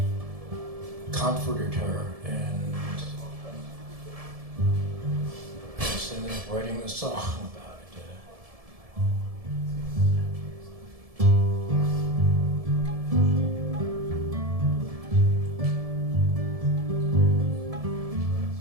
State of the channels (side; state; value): left; late; 1.7 ms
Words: comforted her, and just ended up writing the song about it.